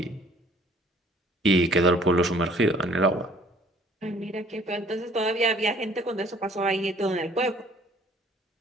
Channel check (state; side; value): normal; both; correlation 0.57